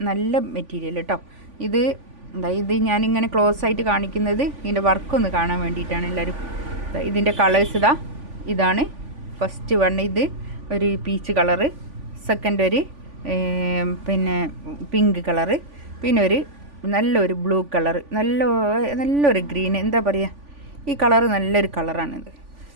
നല്ല മെറ്റീരിയൽ കേട്ടോ. ഇത് ഞാനിങ്ങനെ ക്ലോസ് ആയിട്ട് കാണിക്കുന്നത് ഇതിൻ്റെ വർക്കൊന്ന് കാണാൻ വേണ്ടിയിട്ടാണ് എല്ലാവരും. ഇതിൻ്റെ കളേഴ്സ് ഇതാണ് ഫസ്റ്റ് വൺ. ഇത് ഒരു പീച്ച് കളറ്, സെക്കൻഡ് ഒരു പിങ്ക് കളറ്, പിന്നെ ഒരു നല്ലൊരു ബ്ലൂ കളറ്, നല്ലൊരു ഗ്രീൻ, എന്താ പറയുക, ഈ കളറ് നല്ലൊരു കളറാണിത്.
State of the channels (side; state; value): left; late; 3.5 ms